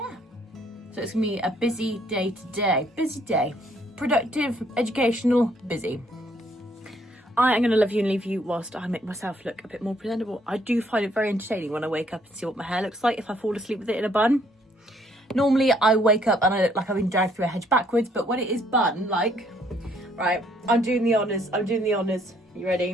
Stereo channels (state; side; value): normal; both; correlation 0.66